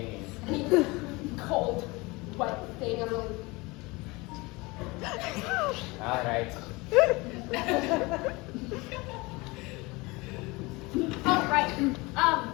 I mean, cold, wet thing. I'm really. All right. Oh, right.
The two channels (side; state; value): right; quieter; 24.1 dB